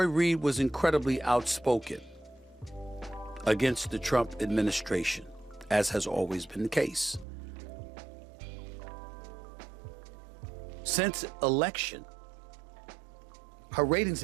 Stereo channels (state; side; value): drops out; left; at 7.2 s